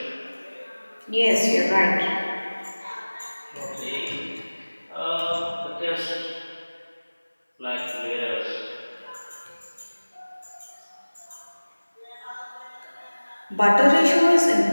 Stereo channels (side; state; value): both; inverted; correlation -1.00